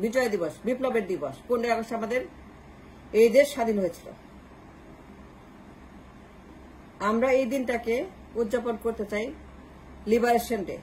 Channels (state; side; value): identical; both; correlation 1.00